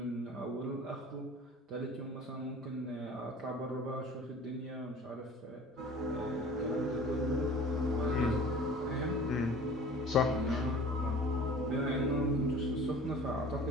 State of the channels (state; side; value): normal; both; correlation 0.43